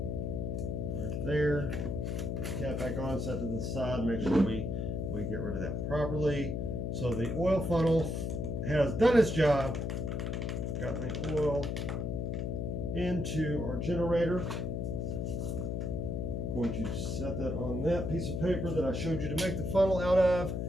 right there. Cap back on, set to the side. Make sure we get rid of that properly. So the oil funnel has done its job. Got the oil into our generator. Going to set that on that piece of paper that I showed you to make the funnel out of.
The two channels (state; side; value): noise; left; hum, 1 dB below the sound